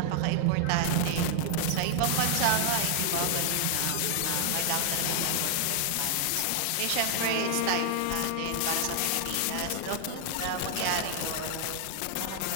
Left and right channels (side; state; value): both; different; correlation 0.00